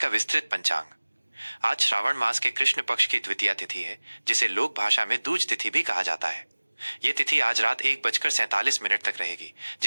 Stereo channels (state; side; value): inverted; both; correlation -1.00